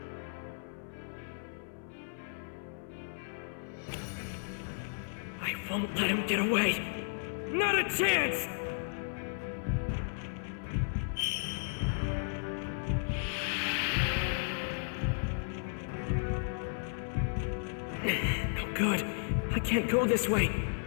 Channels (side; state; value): right; silent; 55 dB below the other